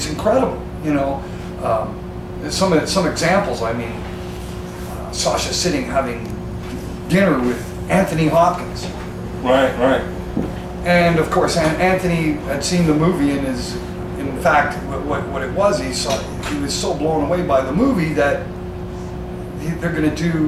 incredible, you know. Some examples. I mean, Sasha sitting having dinner with Anthony Hopkins. Right, right. And of course, Anthony had seen the movie and is, in fact, what it was. He was so blown away by the movie that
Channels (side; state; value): both; identical; correlation 1.00